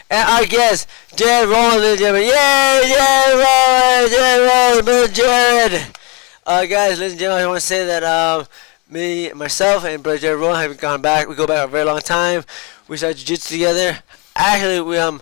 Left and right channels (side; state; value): right; quieter; 29.7 dB